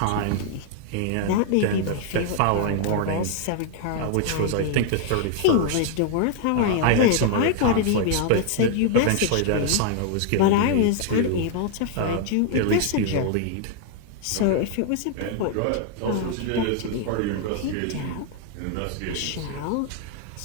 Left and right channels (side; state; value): both; different; correlation 0.00